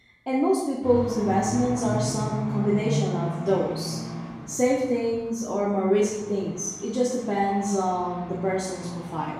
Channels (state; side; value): identical; both; correlation 1.00